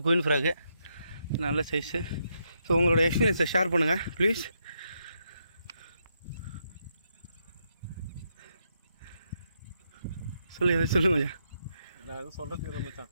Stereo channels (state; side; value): inverted; both; correlation -0.80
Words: குயின் ஃப்ராகு நல்ல சைஸு. ஸோ உங்களோட எக்ஸ்பீரியன்ஸை ஷேர் பண்ணுங்கள் ப்ளீஸ். சொல்லு மச்சான். நான் எதுவும் சொல்கிறதுக்கு மச்சான்,